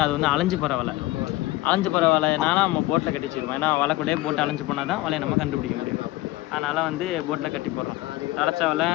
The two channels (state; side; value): quieter; right; 18.4 dB